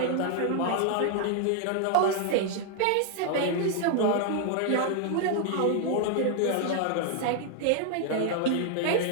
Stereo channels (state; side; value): different; both; correlation 0.00